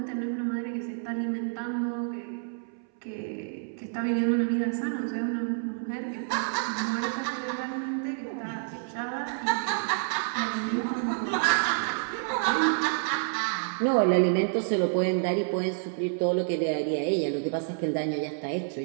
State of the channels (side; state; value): left; silent; 59 dB below the other